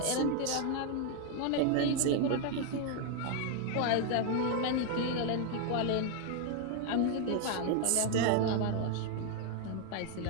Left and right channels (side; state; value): both; different; correlation 0.00